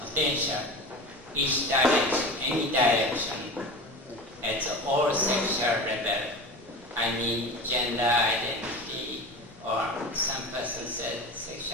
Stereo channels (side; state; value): both; normal; correlation 0.31